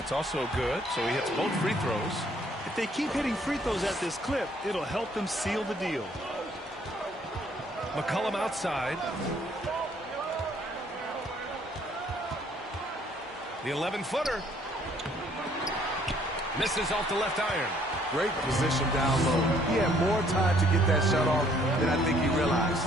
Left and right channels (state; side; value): normal; both; correlation 0.63